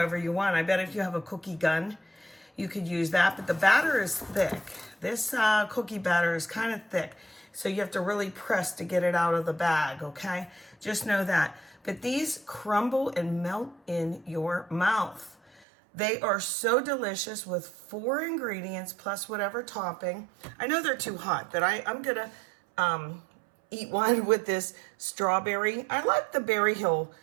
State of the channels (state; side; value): drops out; left; at 15.7 s